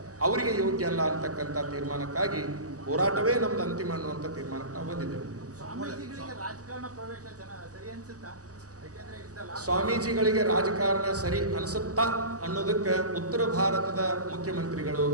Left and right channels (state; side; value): late; left; 0.67 ms